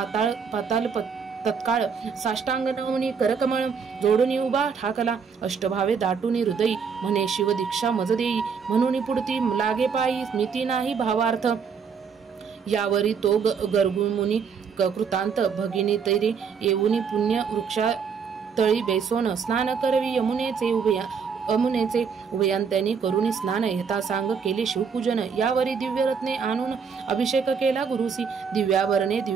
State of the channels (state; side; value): quieter; left; 6.2 dB